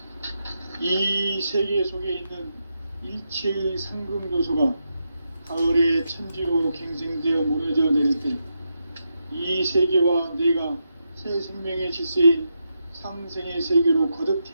이 세계 속에 있는 일체의 상금 요소가 가을의 천지로 갱생되어 무너져 내릴 때 이 세계와 내가 새 생명의 질서인 상생의 세계로 거듭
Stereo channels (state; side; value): inverted; both; correlation -0.85